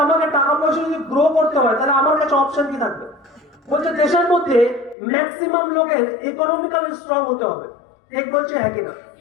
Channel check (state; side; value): drops out; right; at 5.0 s